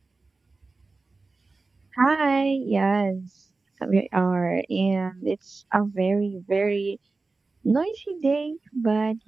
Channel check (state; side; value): quieter; left; 3.7 dB